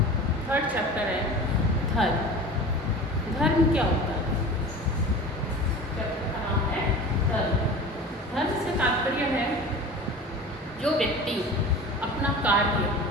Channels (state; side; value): normal; both; correlation 0.36